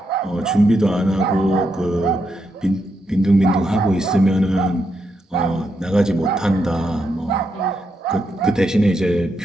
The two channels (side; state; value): both; normal; correlation 0.82